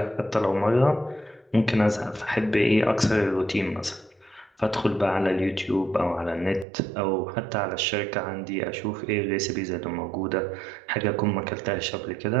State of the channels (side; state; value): left; drops out; at 6.7 s